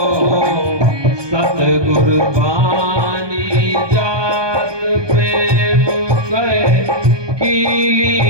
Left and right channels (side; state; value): left; late; 1.2 ms